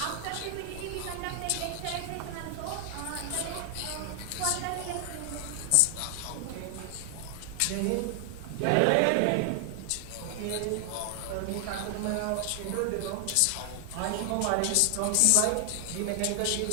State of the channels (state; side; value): different; both; correlation 0.00